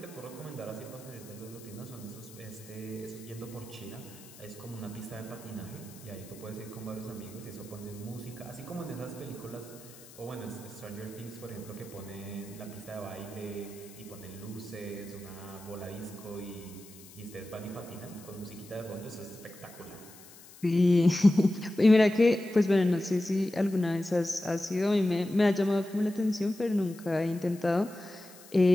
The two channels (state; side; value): noise; left; hiss, 20 dB below the sound